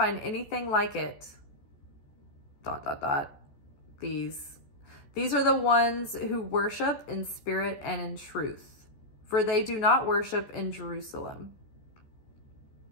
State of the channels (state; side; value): late; right; 14 ms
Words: anything like it. ... These are the ones who worship in spirit and in truth, for they do not worship in Jerusalem.